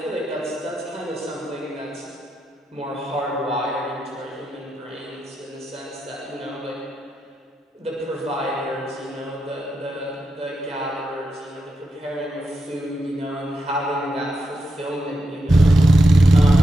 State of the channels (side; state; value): both; normal; correlation 0.86